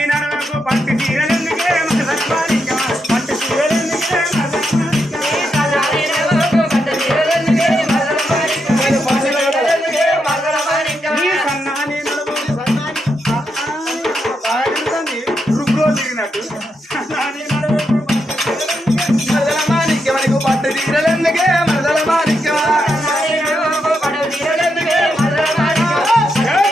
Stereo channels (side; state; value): both; normal; correlation 0.83